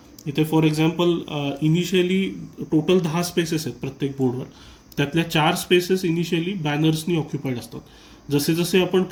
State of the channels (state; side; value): identical; both; correlation 1.00